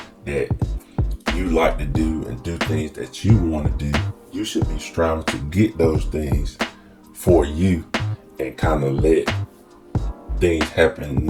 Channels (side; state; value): both; identical; correlation 1.00